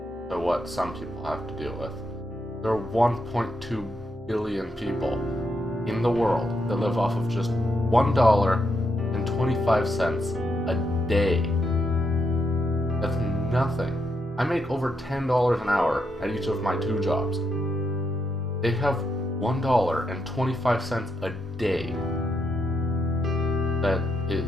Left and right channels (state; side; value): normal; both; correlation 0.81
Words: to what some people have to deal with. There are 1.2 billion people in the world that live off of just $1.25 a day. That's nothing. I make over $10 an hour at each of my 2 jobs. They have $1.25 a day. That